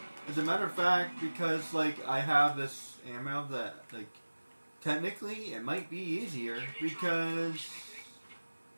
As a matter of fact, because, like, I have this ammo that, like, technically it might be easier because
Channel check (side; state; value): both; inverted; correlation -1.00